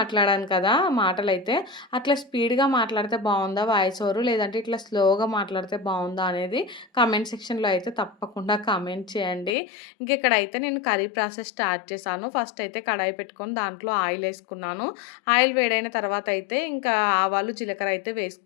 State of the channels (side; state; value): right; drops out; at 9.6 s